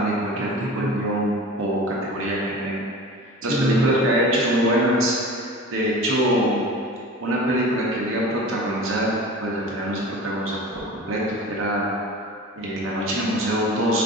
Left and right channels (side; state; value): both; normal; correlation 0.37